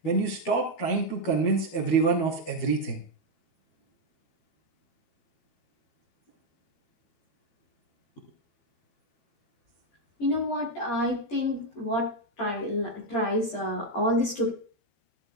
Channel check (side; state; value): right; late; 12 ms